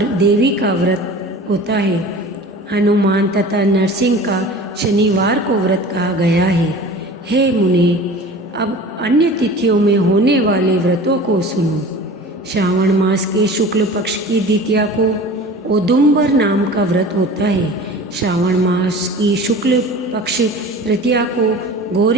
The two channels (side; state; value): both; normal; correlation 0.39